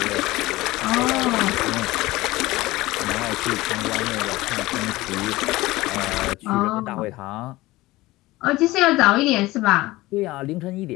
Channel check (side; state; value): right; quieter; 19.0 dB